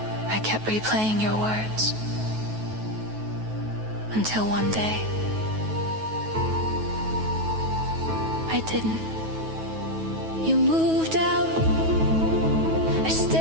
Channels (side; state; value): left; late; 9.3 ms